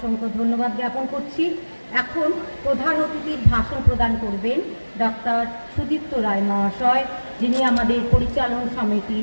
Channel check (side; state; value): both; inverted; correlation -1.00